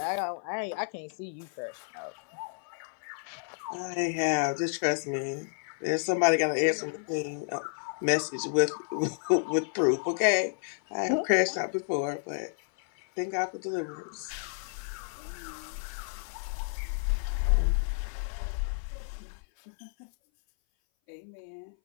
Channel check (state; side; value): silent; right; 57 dB below the other